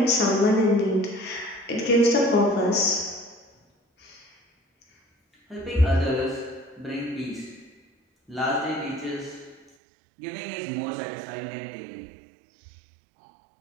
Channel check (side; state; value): left; drops out; at 9.7 s